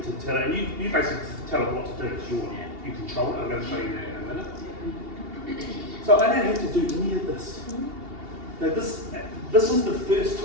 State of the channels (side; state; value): left; late; 2.8 ms